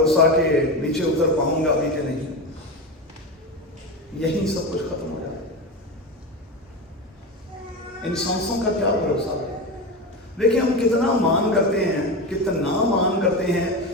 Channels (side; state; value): both; normal; correlation 0.22